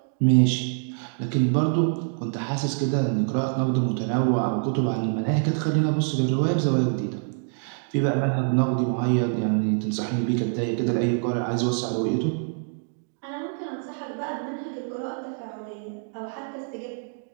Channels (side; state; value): left; silent; 61 dB below the other